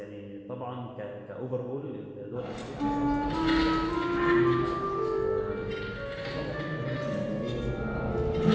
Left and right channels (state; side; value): identical; both; correlation 1.00